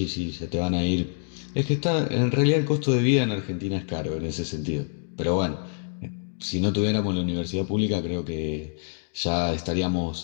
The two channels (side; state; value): right; silent; digital silence